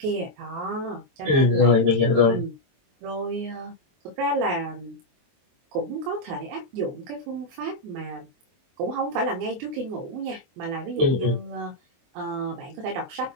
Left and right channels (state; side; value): late; left; 22 ms